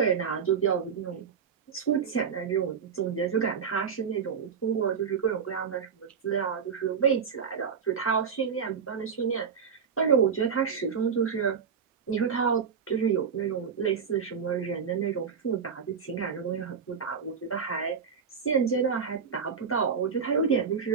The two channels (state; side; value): quieter; left; 6.6 dB